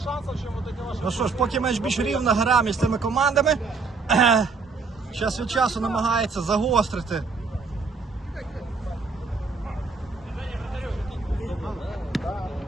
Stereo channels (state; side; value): quieter; left; 4.4 dB